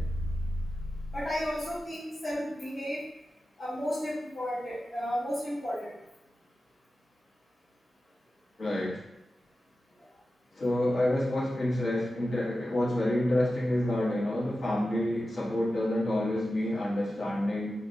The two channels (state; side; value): normal; both; correlation 0.93